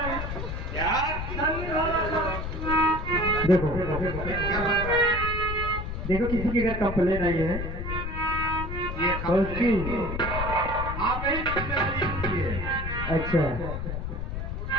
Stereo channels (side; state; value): left; noise; rumble, 5 dB below the sound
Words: यार ठंडी वाला का देखो देखो, किसी की अगर कंप्लेन आई है ये तो उसकी आप ही जिम्मेदारी है। अच्छा